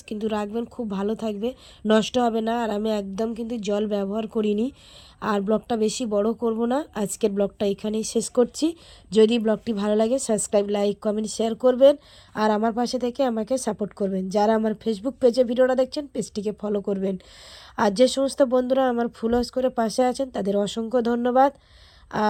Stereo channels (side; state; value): both; identical; correlation 1.00